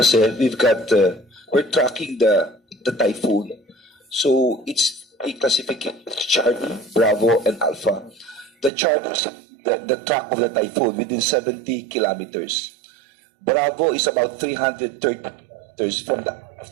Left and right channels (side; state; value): left; drops out; at 8.7 s